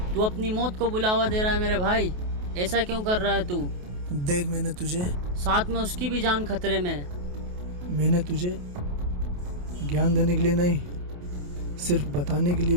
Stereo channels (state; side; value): late; left; 28 ms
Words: तू अपनी मौत को बुलावा दे रहा है मेरे भाई, ऐसा क्यों कर रहा है तू? देख, मैंने तुझे, साथ में उसकी भी जान खतरे में। मैंने तुझे ज्ञान देने के लिए नहीं, सिर्फ बताने के लिए